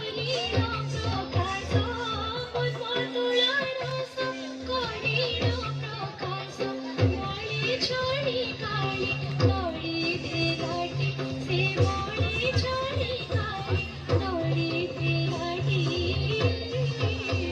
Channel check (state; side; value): identical; both; correlation 1.00